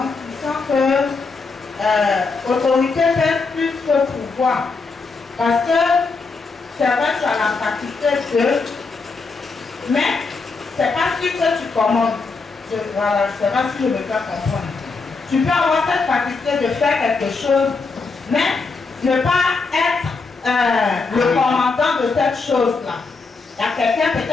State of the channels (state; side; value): quieter; right; 4.3 dB